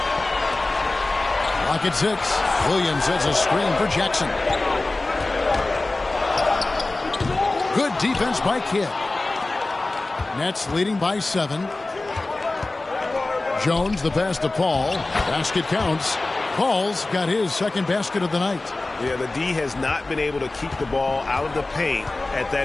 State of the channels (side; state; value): right; quieter; 3.1 dB